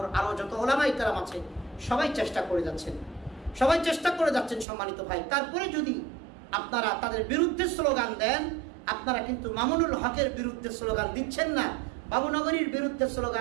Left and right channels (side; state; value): left; drops out; at 4.7 s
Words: আরো যত ওলামায়ে কেরাম আছে সবাই চেষ্টা করে যাচ্ছেন, সম্মানিত ভাই। তারপরে যদি আপনারা তাদের বিরুদ্ধে স্লোগান দেন, আপনারা কিন্তু মামুনুল হকের বিরুদ্ধে স্লোগান দিচ্ছেন না, বাবুনগরীর বিরুদ্ধে